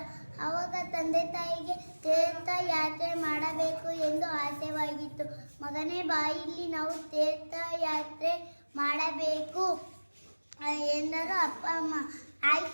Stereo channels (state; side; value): inverted; both; correlation -1.00